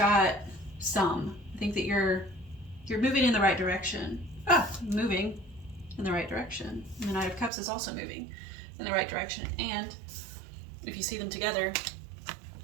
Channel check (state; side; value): drops out; left; at 7.5 s